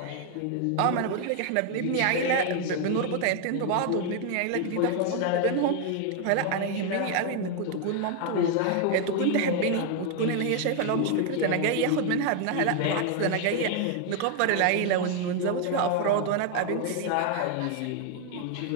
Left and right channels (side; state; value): both; different; correlation 0.00